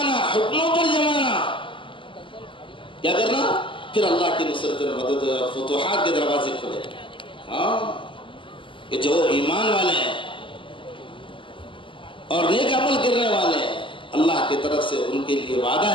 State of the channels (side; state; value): right; late; 0.25 ms